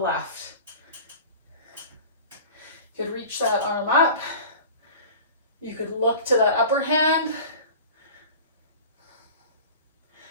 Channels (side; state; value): both; inverted; correlation -0.39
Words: You could reach that arm up. You could look to the upper hand.